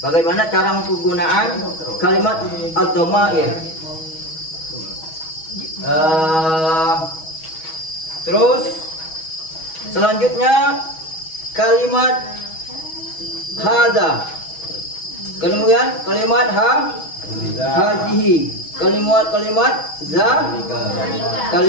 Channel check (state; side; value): late; right; 6.2 ms